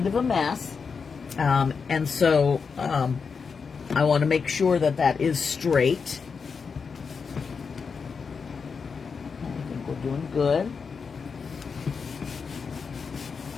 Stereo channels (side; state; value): right; quieter; 5.5 dB